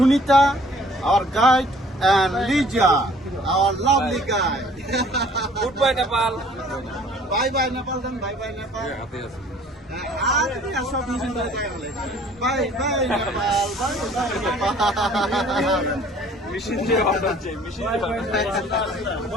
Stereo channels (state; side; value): normal; both; correlation 0.54